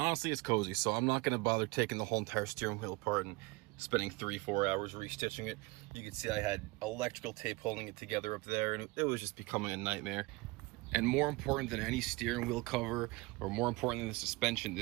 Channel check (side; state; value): left; quieter; 23.3 dB